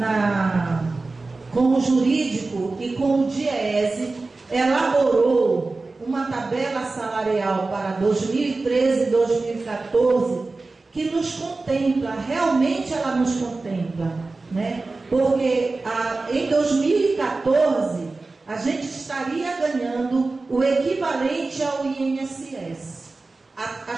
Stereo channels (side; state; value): left; quieter; 3.5 dB